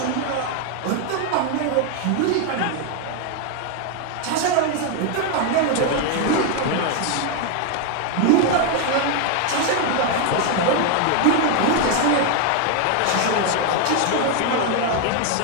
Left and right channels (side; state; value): both; different; correlation 0.01